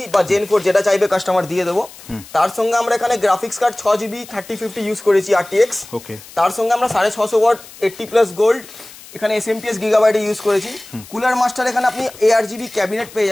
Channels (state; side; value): noise; left; hiss, 19 dB below the sound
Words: বা জেন 4 যেটা চাইবে কাস্টমার দিয়ে দেবো। তার সঙ্গে আমরা এখানে গ্রাফিক্স কার্ড 6GB 3050 ইউজ করেছি RTX। তার সঙ্গে আমরা 650 ওয়াট 80+ গোল্ড এখানে SMPS গিগাবাইটে ইউজ করেছি। কুলার মাস্টার এখানে আপনি ARGB ক্যাবিনেট পেয়ে